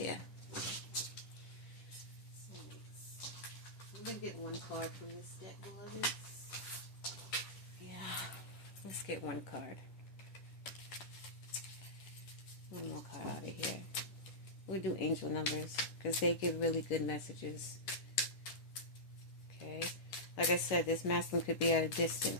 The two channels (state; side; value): late; right; 10 ms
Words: Soulmates. I'm going to get one card from this deck, beloveds. Yeah. Let's get one card. One more card out of here. We'll do angel numbers because they give really good messages. Okay. Like I said, this masculine could be at a